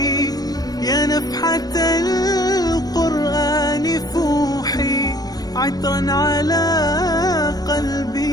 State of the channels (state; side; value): late; right; 0.19 ms